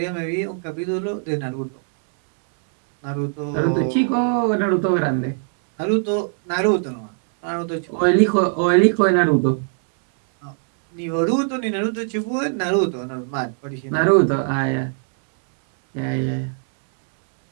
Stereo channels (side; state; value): left; silent; 64 dB below the other